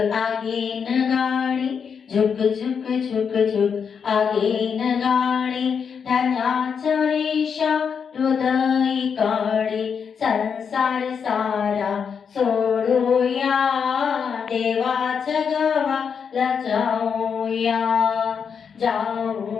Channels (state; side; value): quieter; right; 6.6 dB